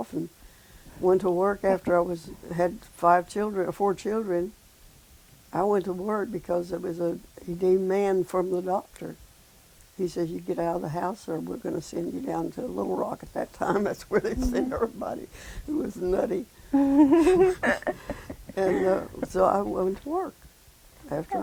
and went to work after I had 4 children. I went to work because it was he demand from the doctor. He says, you get out of the house or we're going to send you down to Little Rock at that time. That's where they sent everybody who was nutty. And so I went to work after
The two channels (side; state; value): both; identical; correlation 1.00